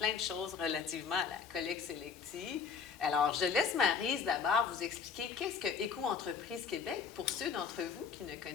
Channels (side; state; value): right; quieter; 6.1 dB